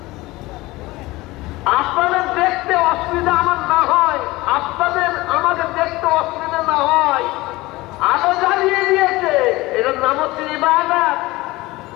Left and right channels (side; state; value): right; quieter; 20.1 dB